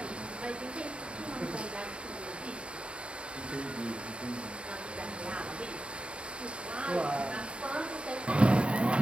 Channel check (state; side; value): late; left; 0.056 ms